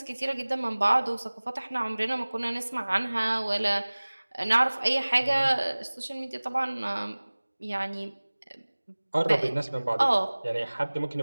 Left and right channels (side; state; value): both; inverted; correlation -1.00